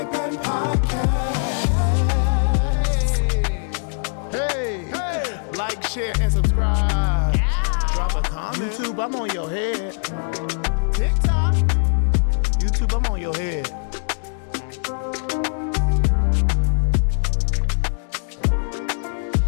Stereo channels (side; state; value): right; silent; digital silence